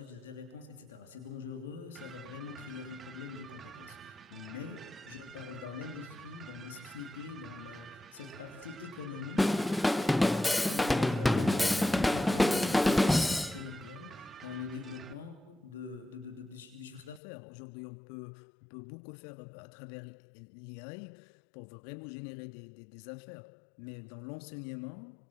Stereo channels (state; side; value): drops out; right; at 17.2 s